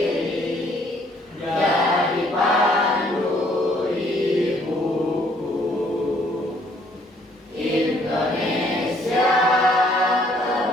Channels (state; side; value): normal; both; correlation 0.63